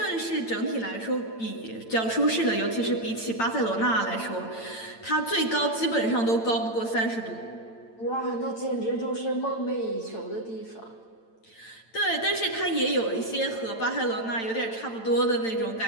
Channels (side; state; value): right; late; 8.9 ms